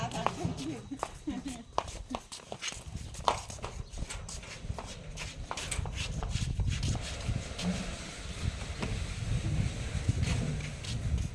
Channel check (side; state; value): both; identical; correlation 1.00